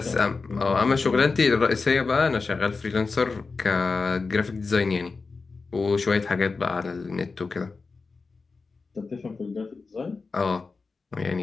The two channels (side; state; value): right; quieter; 4.3 dB